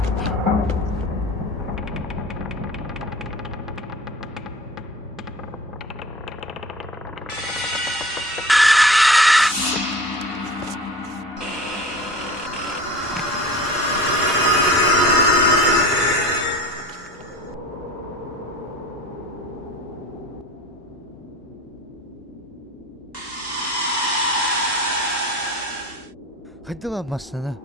Hadi lan masana.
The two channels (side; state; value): both; normal; correlation 0.38